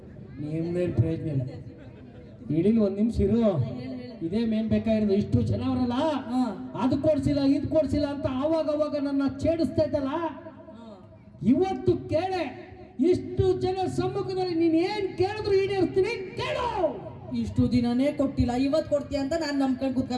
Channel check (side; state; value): both; identical; correlation 1.00